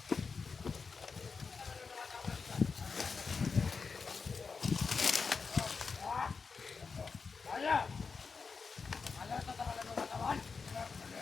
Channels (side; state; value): right; quieter; 5.0 dB